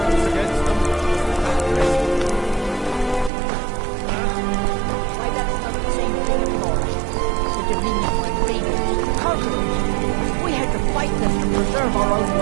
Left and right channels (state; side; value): drops out; left; at 3.3 s